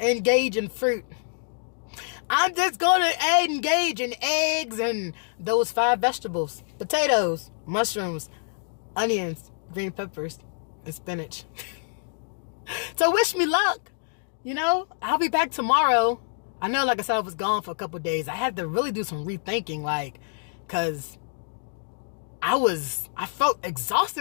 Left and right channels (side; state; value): right; silent; digital silence